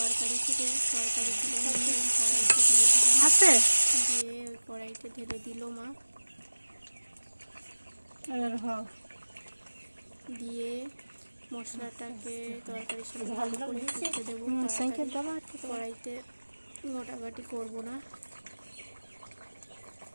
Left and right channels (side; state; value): both; inverted; correlation -1.00